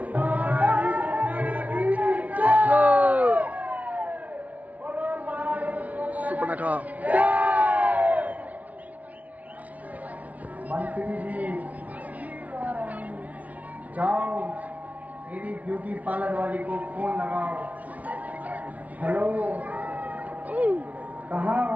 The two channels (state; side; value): late; left; 0.070 ms